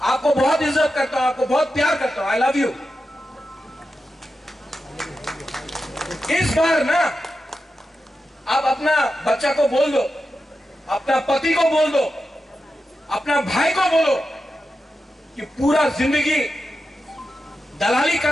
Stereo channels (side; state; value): both; normal; correlation 0.90